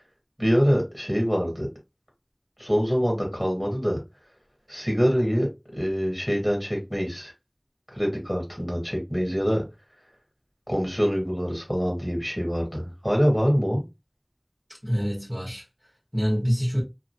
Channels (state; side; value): identical; both; correlation 1.00